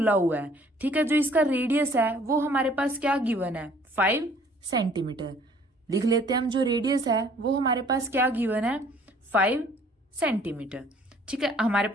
हुआ है, ठीक है। जो इसका रेडियस है वो हमारे पास क्या गिवन है, 5 सेंटीमीटर। लिख लेते हैं हम, जो रेडियस है वो हमारे पास क्या गिवन है, 5 सेंटीमीटर, ठीक है। हमारे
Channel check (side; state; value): both; normal; correlation 0.57